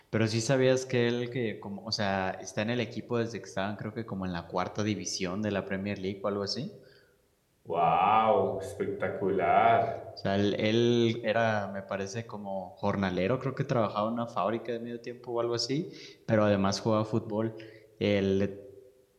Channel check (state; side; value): identical; both; correlation 1.00